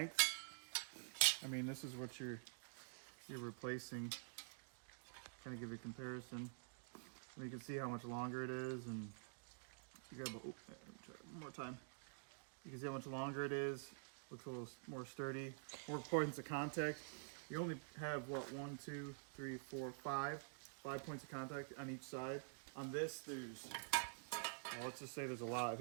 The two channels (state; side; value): silent; left; digital silence